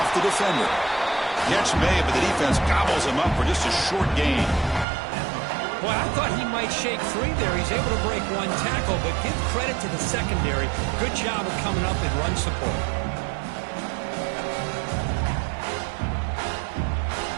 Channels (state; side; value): drops out; left; at 4.9 s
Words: the defender. Catch made, but the defense gobbles him up for just a short gain. Boy, I thought he might shake free there. He's able to break one tackle, but give credit to the secondary. Good job of coming up and run support.